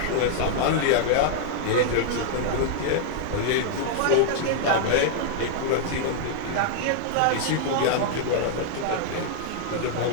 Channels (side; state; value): both; different; correlation -0.01